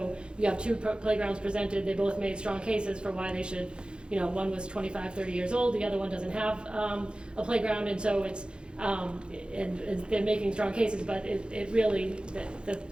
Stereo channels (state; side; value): late; left; 0.053 ms